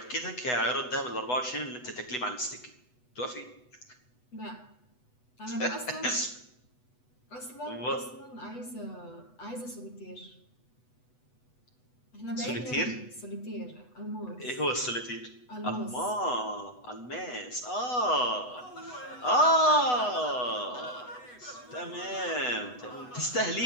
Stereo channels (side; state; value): right; late; 8.1 ms